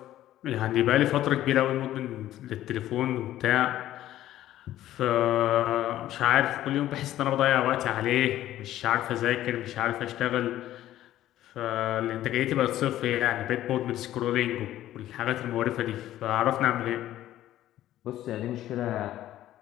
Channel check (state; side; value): quieter; right; 13.4 dB